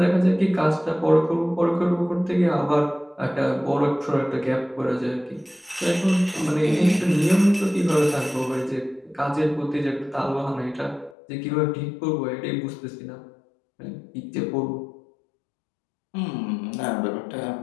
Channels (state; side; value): drops out; right; at 11.2 s